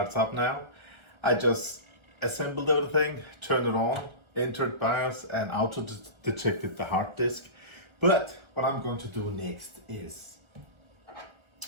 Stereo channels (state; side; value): late; left; 1.4 ms